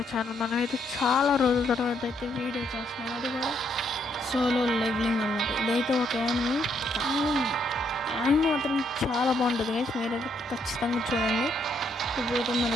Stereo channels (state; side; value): normal; both; correlation 0.73